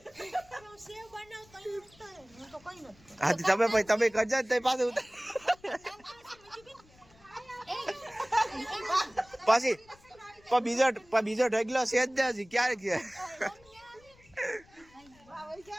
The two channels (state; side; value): noise; left; rumble, 28 dB below the sound